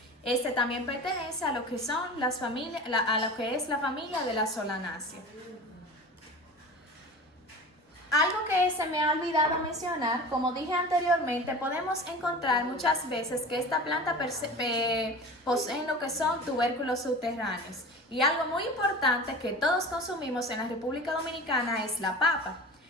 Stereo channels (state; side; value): normal; both; correlation 0.36